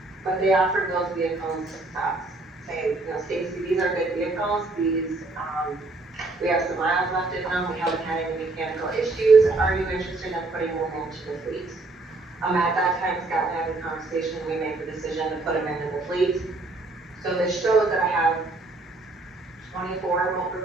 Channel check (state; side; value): quieter; left; 3.2 dB